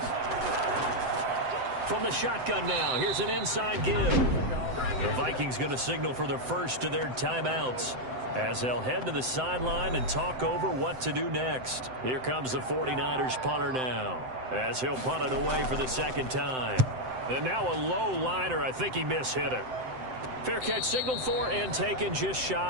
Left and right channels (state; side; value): late; left; 7.8 ms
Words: From the shotgun now, here's an inside give. The Vikings going to signal for the first of their timeouts as they'll head to the sideline and talk over what to do next. Here comes the 49ers punter now as he'll punt it away for the 2nd time. And now a low liner. I think he mishit it. Fair catch signaled for and taken just